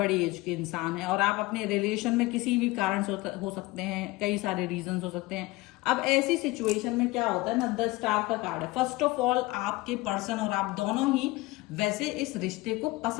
एज के इंसान हैं और आप अपने रिलेशन में किसी भी कारण से हो सकते हैं, कई सारे रीजंस हो सकते हैं। अब ऐसी सिचुएशन में क्या होता है ना, द स्टार का कार्ड है। फर्स्ट ऑफ ऑल, आपके पर्सन और आप दोनों ही वैसे इस रिश्ते को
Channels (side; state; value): right; quieter; 21.1 dB